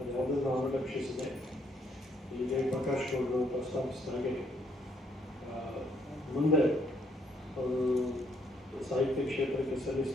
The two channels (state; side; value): normal; both; correlation 0.70